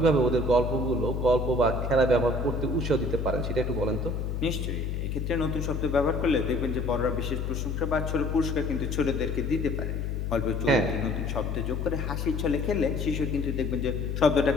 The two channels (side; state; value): left; noise; hum, 2 dB below the sound